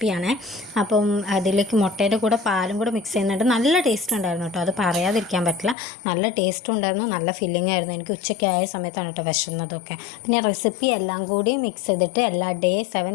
അപ്പം അതിലേക്ക് മുട്ടയുടെ കൂടെ പാലും കൂടെ മിക്സ് ചെയ്യുന്നുണ്ട്. നല്ല ടേസ്റ്റ് ഉണ്ടായിരുന്നു കേട്ടോ, അത് പറയാതിരിക്കാൻ പറ്റില്ല. നല്ല ടേസ്റ്റും ഉണ്ടായിരുന്നു, നല്ല ഫില്ലിംഗ് ആയിരുന്നു. എനിക്ക് ഉച്ചയ്ക്ക് ആയ സമയത്താണ് കേട്ടോ വിശന്നതൊക്കെ. പിന്നെ റെസിപ്പി എല്ലാം കൂടി മിക്സ് ചെയ്തിട്ട് എല്ലാ ഡേ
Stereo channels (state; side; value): drops out; right; at 5.8 s